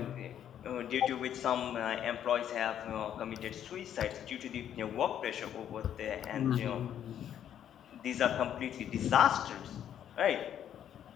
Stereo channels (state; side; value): quieter; right; 10.0 dB